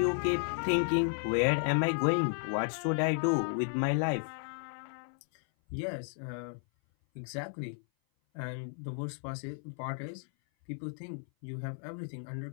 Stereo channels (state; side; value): silent; right; 56 dB below the other